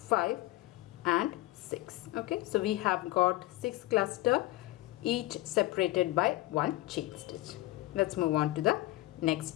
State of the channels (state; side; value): quieter; right; 18.3 dB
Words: and 6. Okay, so we have got 6 cluster, each separated by 1 chain stitch. Let's move on to the